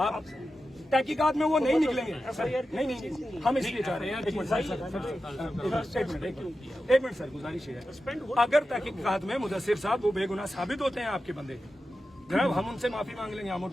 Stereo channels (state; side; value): normal; both; correlation 0.91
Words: तहकीकात में वो नहीं निकलेंगे नहीं हम इसलिए चाह रहे हैं एक मिनट सर गुजारिश है अगर तहकीकात में मुदस्सिर साहब वो बेगुनाह साबित होते हैं आपके बंदे जनाब हम उनसे माफी मांग लेंगे हम